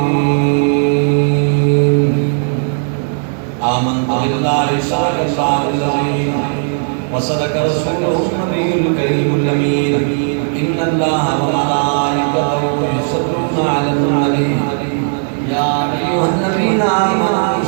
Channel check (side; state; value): left; silent; 64 dB below the other